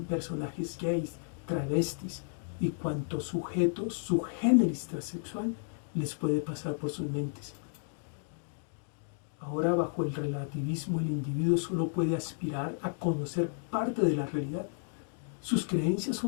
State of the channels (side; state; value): right; silent; digital silence